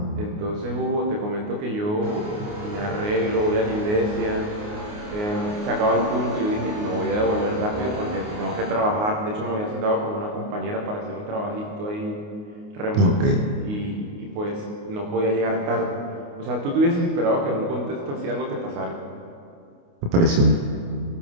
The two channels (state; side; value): late; left; 29 ms